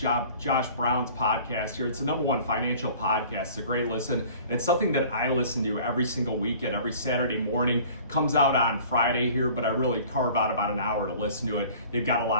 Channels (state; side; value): inverted; both; correlation -0.47